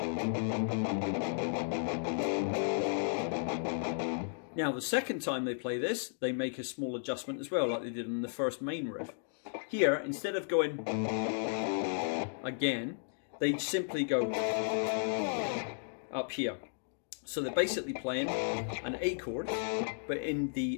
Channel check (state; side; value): silent; right; digital silence